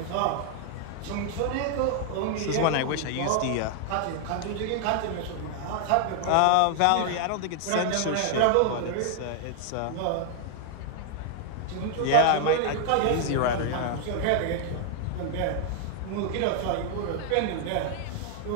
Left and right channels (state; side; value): different; both; correlation 0.00